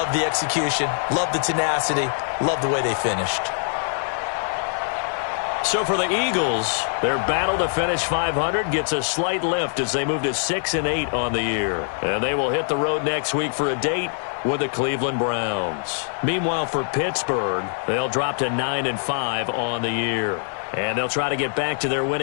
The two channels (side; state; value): right; silent; 63 dB below the other